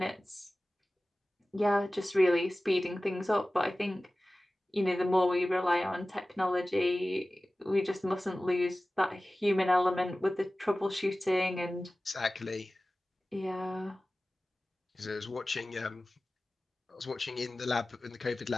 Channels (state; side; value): normal; both; correlation 0.97